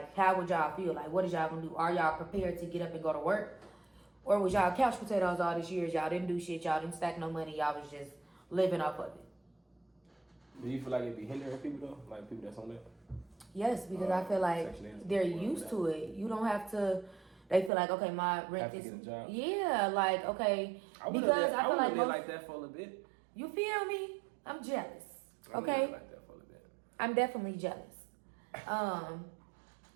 how would y'all feel? What is y'all gonna do? Are y'all prepared to get up and go to work? Or was y'all couch potatoes all these years? Y'all didn't do shit. Y'all didn't stack no money. Y'all was just living off of it. Do you feel like it be hindering people though? People that's on that? Yes, because I feel like they're used to it. You don't have to. They feel like, okay, my rent is. Get a job. Yeah, okay. I feel like that for a little bit. You feel me? I'm jealous. Okay. I like that for a little bit. I'm definitely jealous.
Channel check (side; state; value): left; drops out; at 17.7 s